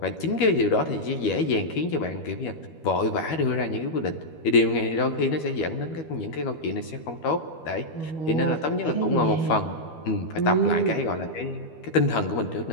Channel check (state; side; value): late; right; 12 ms